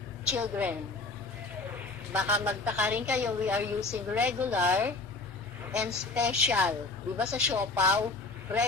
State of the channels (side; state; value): right; quieter; 3.5 dB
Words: children. Baka magtaka rin kayo, we are using regular and special. Diba sa Siopaw,